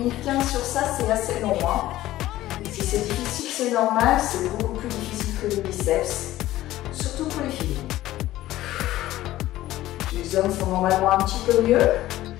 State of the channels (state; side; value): quieter; right; 15.3 dB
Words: 15 sur ça, c'est assez long. Hein. Si c'est difficile, c'est normal. C'est beaucoup plus difficile que les biceps. Surtout pour les filles. Les hommes font normalement un petit peu mieux.